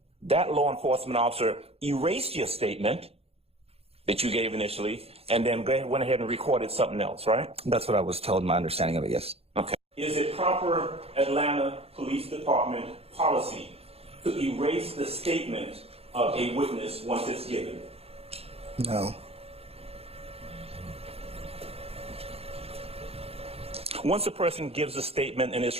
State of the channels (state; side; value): late; left; 0.29 ms